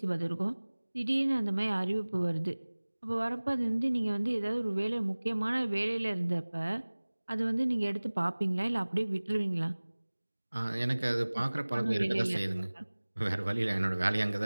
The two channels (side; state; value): both; inverted; correlation -1.00